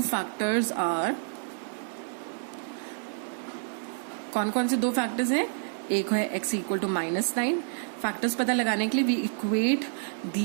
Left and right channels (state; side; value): silent; left; digital silence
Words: factors are, कौन कौन से दो फैक्टर्स हैं, एक है x इक्वल टू -9. फैक्टर्स पता लगाने के लिए वी इक्वेट